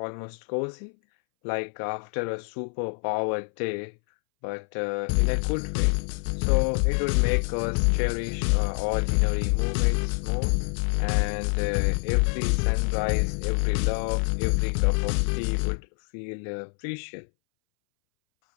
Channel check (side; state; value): right; silent; 61 dB below the other